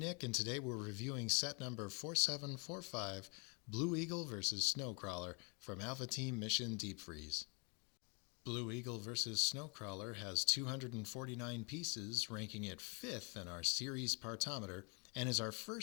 and today we're reviewing set number 4745, Blue Eagle vs. Snowcrawler from Alpha Team Mission Deep Freeze. Blue Eagle vs. Snowcrawler has 249 pieces, ranking it 5th in our series partometer, and is our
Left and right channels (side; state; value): right; quieter; 34.5 dB